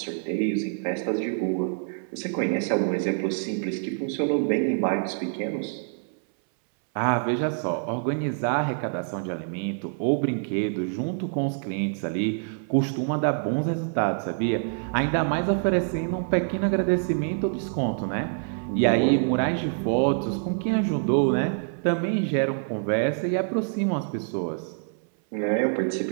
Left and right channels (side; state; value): left; silent; 61 dB below the other